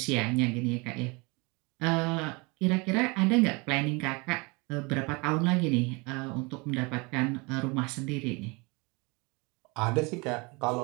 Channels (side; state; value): left; quieter; 27.8 dB